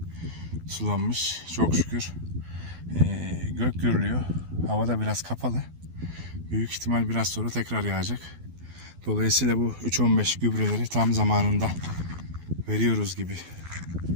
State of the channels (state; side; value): late; left; 12 ms